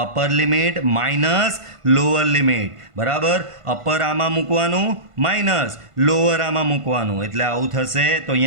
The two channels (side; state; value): left; late; 1.5 ms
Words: Upper limit minus lower limit, બરાબર. અપર આમાં મૂકવાનું, માઇનસ લોઅર આમાં મૂકવાનું, એટલે આવું થશે. તો